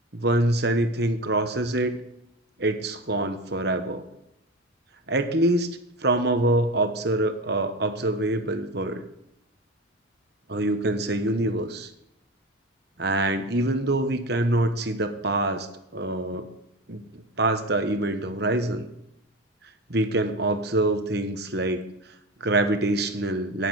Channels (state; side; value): normal; both; correlation 0.27